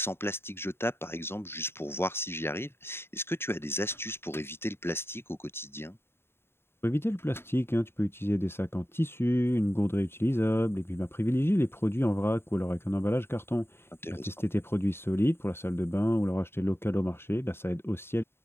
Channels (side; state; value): right; late; 0.11 ms